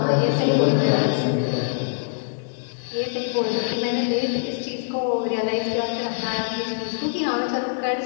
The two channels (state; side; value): silent; right; digital silence